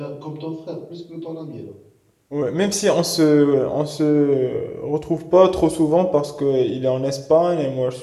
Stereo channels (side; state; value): both; identical; correlation 1.00